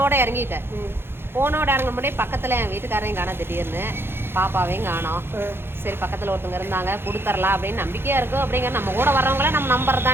இறங்கிட்டேன். ஃபோனோட இறங்க முடியும் பக்கத்தில் என் வீட்டுக்காரையும் காணோம், திடீர்னு பாப்பாவையும் காணோம். சரி பக்கத்தில் ஒருத்தவங்க இருந்தாங்க, கொடுத்துடலாம் அப்படின்னு நம்பிக்கையாக இருக்கும். அப்படிங்கிற நம்ம கூட வர்றவங்கள நம்ம நம்பர்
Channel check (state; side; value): late; left; 0.11 ms